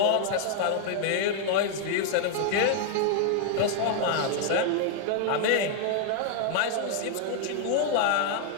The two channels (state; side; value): different; both; correlation 0.00